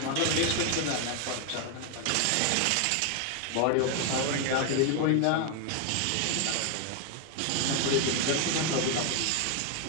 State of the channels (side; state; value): both; different; correlation 0.01